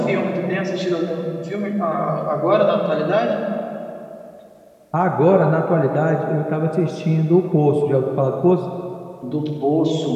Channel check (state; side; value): identical; both; correlation 1.00